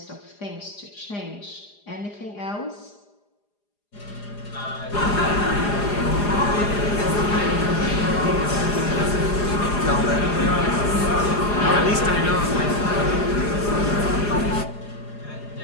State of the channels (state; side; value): late; right; 4.9 ms